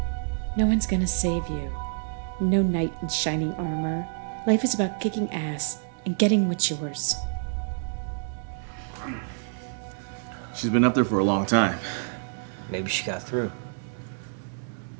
No one's gonna save you. No knight in shining armor. Life is about kicking ass and getting what's yours. She's been up there for a long time. Maybe she got through.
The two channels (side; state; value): left; silent; digital silence